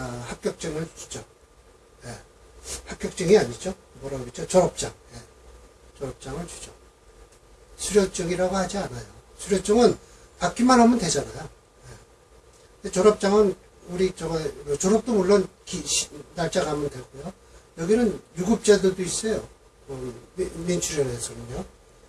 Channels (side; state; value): both; identical; correlation 1.00